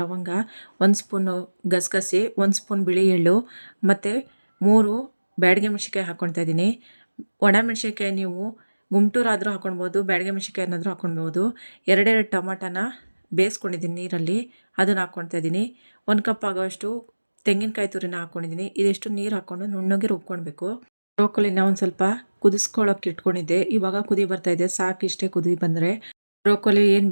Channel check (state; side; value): inverted; both; correlation -1.00